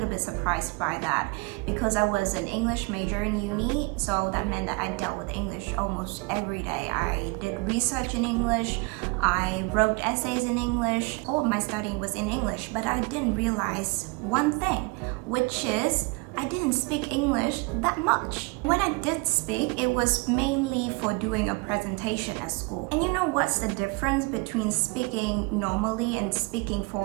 bit surprised by that because I was an English major in uni. So that meant that I dealt with English almost every day. I did research in English. I wrote essays in English. All of my studying was in English. But I didn't realize one thing, which is I didn't speak English that much. When I did speak, it was mainly for doing a presentation at school. And you know what's the difference between speaking normally and speaking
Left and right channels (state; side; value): quieter; left; 27.4 dB